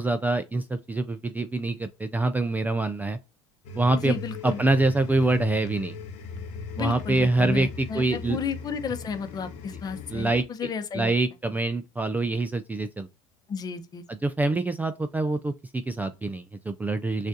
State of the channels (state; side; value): normal; both; correlation 0.80